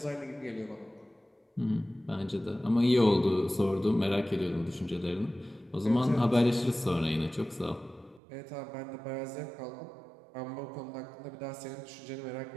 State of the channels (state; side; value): drops out; left; at 8.2 s